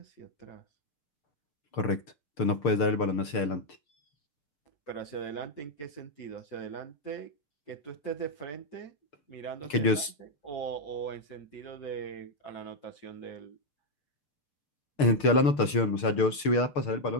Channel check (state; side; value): late; right; 6.7 ms